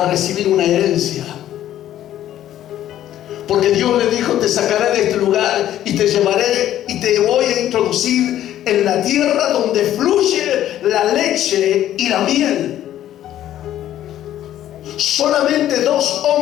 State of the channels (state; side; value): quieter; right; 12.2 dB